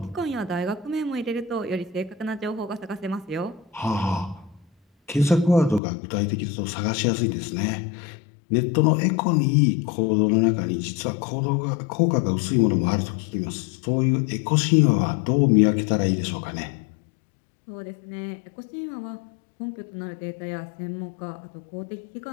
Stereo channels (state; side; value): drops out; right; at 5.8 s